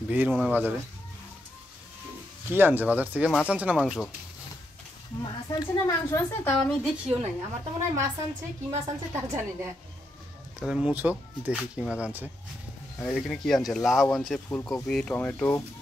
ভিড় মনে হয় বাজারে। কি আনছে বাজার থেকে? মাছ আনছে না মাংস? মাছ আনছে না মাংস আনছে তাও আমি দেখিও নাই। আমার তো মনে হয় মাছ আনছে, কি মাছ আনছে তাও জানি না। তাহলে মুছো দেখি কি মাছ আনছে। আর এখানে কি আনছে? লাউ আনছে, ফুলকপি, টমেটো,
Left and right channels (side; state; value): both; normal; correlation 0.81